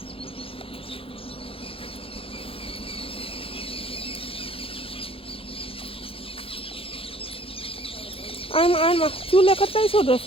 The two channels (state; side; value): late; right; 0.27 ms